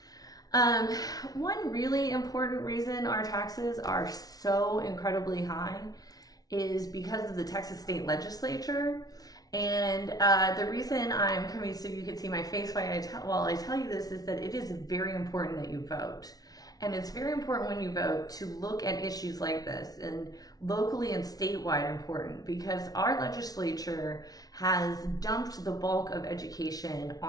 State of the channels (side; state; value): right; late; 0.18 ms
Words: One really important reason our taxes are so incredibly high is because of the Texas State Legislature. And the reason I'm coming so you can see my face while I tell you this is that it is very important that you vote. And it's very important when you vote to look at issues like this, and locally and statewide important, because our legislature has dumped the bulk of education